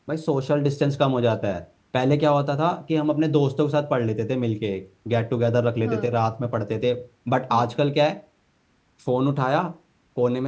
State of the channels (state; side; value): identical; both; correlation 1.00